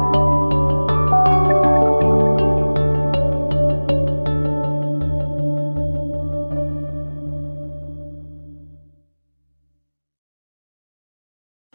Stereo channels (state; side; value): inverted; both; correlation -1.00